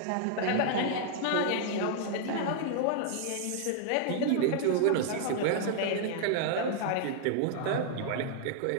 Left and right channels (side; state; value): both; different; correlation -0.01